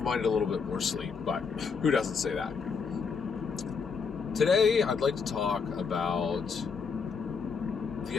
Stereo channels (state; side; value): quieter; right; 5.5 dB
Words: minded a little bit more sleep, but who doesn't say that? Today, I'd like to talk about the